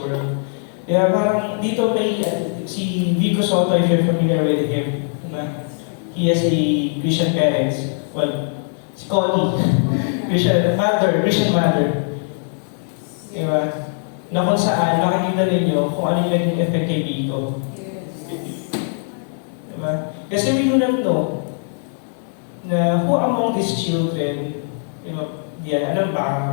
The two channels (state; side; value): silent; right; digital silence